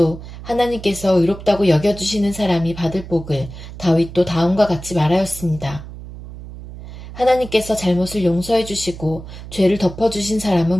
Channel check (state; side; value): noise; right; hum, 13 dB below the sound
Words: 하나님께서 의롭다고 여겨주시는 사람이 받을 복을 다윗도 다음과 같이 말하였습니다. 하나님께서 잘못을 용서해 주시고 죄를 덮어주신